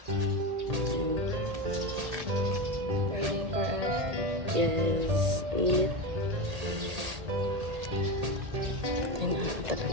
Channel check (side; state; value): left; late; 1.8 ms